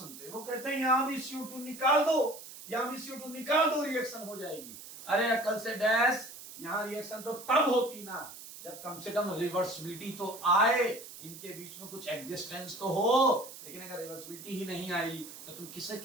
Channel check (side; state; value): right; noise; hiss, 14 dB below the sound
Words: वो कहते हैं यहां भी CO2 निकाल दो, यहां भी CO2 निकाल दो, रिएक्शन हो जाएगी। अरे अकल से डैश, यहां रिएक्शन तो तब होती ना जब कम से कम रिवर्सिबिलिटी तो आए, इनके बीच में कुछ एग्जिस्टेंस तो हो। लेकिन अगर रिवर्सिबिलिटी ही नहीं आई तो तुम किसे